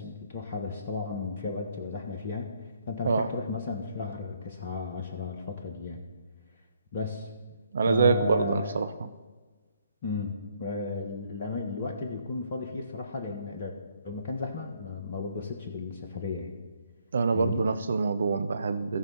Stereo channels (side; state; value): both; inverted; correlation -0.69